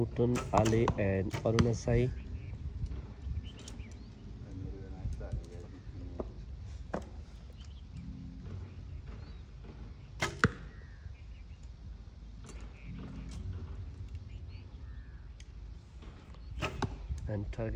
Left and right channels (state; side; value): identical; both; correlation 1.00